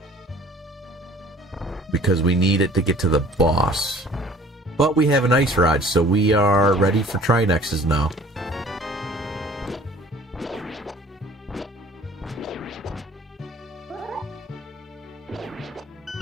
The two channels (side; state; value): both; normal; correlation 0.50